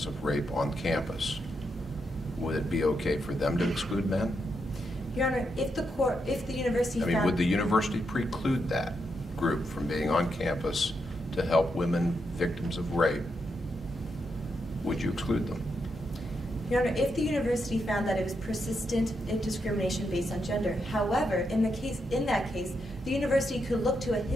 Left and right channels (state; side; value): normal; both; correlation 0.82